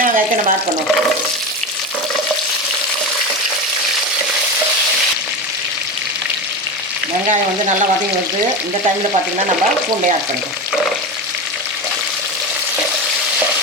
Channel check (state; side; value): normal; both; correlation 0.22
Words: வெங்காயத்தை நம்ம ஆட் பண்ணுவோம். வெங்காயம் நல்லா வதங்கி வருது. இந்த டைமில் பார்த்திங்கன்னா நம்ம பூண்டை ஆட் பண்ணிக்கோம்.